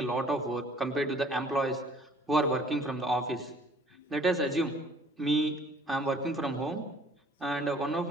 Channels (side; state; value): both; normal; correlation 0.55